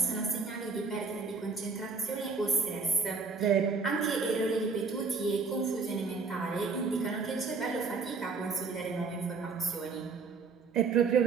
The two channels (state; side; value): quieter; left; 4.6 dB